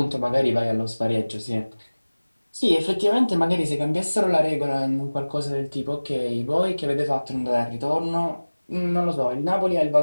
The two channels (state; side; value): inverted; both; correlation -1.00